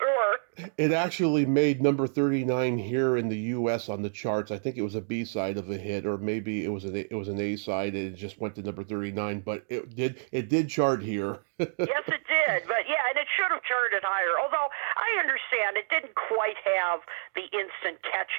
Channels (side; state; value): left; silent; digital silence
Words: It actually made number 39 here in the U.S. on the charts. I think it was a B-side of a hit, or maybe it was an A-side, and it just went to number 39. But it did chart here. Yes, it did. But yeah, and it should have charted higher. Although I understand it didn't quite have the instant